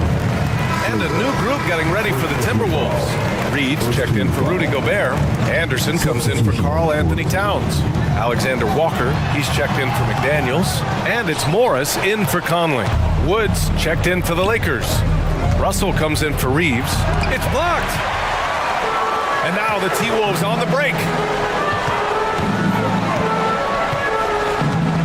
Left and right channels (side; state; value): both; identical; correlation 1.00